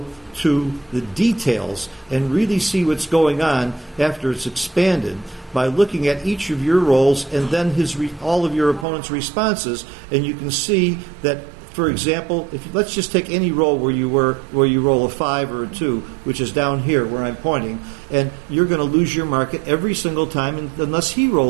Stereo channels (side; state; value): left; drops out; at 8.8 s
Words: to the details and really see what's going on after it's expanded by looking at each of your rolls and then all of your opponent's responses. And you can see that, for example, let's just take any roll where you roll a 5 or a 2, which is down here where I'm pointing, and you're going to lose your market every single time unless he